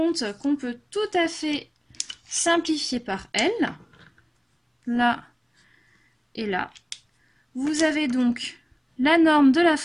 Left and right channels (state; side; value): identical; both; correlation 1.00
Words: qu'on peut tout à fait simplifier par L, là et là. Vous avez donc la norme de la